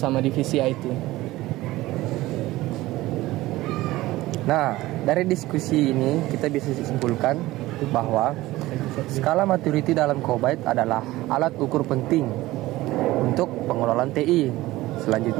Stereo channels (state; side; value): quieter; left; 17.8 dB